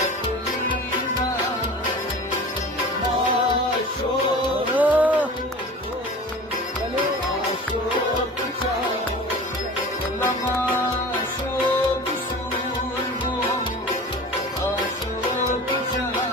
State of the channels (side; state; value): both; normal; correlation 0.37